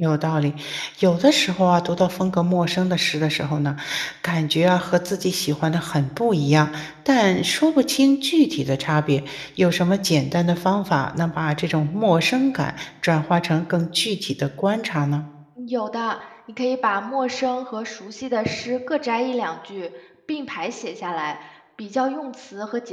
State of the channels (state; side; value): identical; both; correlation 1.00